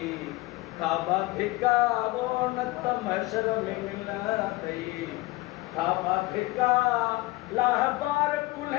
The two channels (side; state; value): right; quieter; 20.6 dB